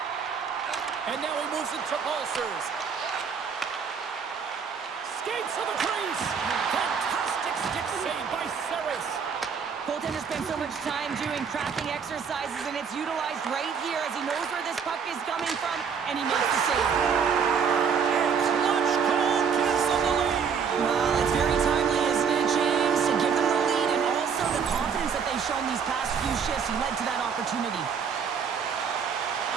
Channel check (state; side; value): quieter; left; 6.5 dB